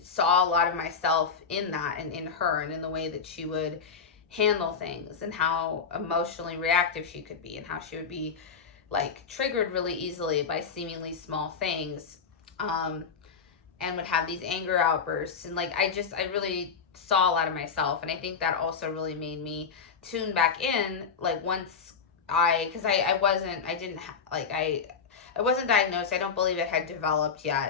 saw a lot of myself in that and in her and in the way that she would handle things and how emotionally reactive she could be and how she would be like triggered really easily by seemingly small things, and would have these anger outbursts. And like I really saw a lot of myself, and I think that also really made me tune back in. Like once because I wasn't, I didn't like I wasn't diagnosed. I don't believe it had developed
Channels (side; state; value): right; quieter; 5.9 dB